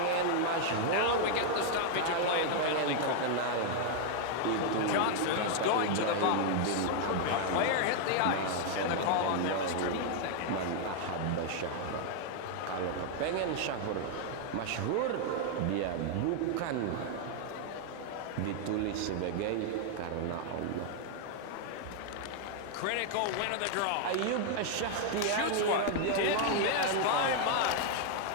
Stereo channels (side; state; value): both; different; correlation 0.00